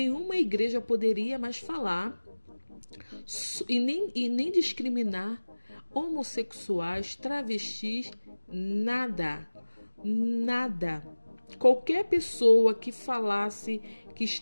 igreja poderia mais falar e nem discriminar homossexuais, travestis, nada. Nada. Qualquer pessoa que falasse que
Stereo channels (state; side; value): inverted; both; correlation -1.00